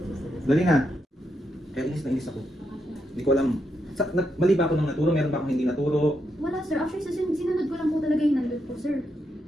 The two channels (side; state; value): both; normal; correlation 0.81